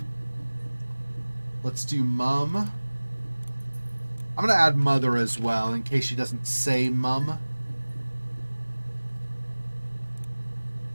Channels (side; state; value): both; inverted; correlation -1.00